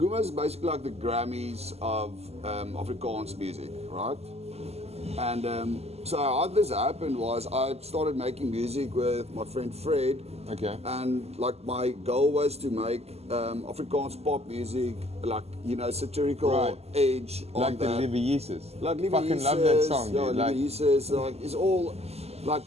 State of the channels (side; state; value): left; late; 0.30 ms